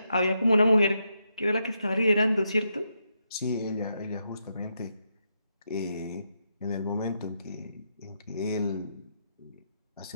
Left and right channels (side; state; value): both; inverted; correlation -0.82